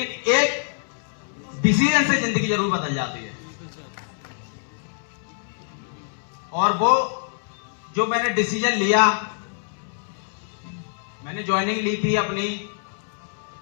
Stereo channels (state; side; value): silent; right; 62 dB below the other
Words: एक डिसीजन से जिंदगी जरूर बदल जाती है। और वो जो मैंने डिसीजन लिया, मैंने ज्वाइनिंग ली थी अपनी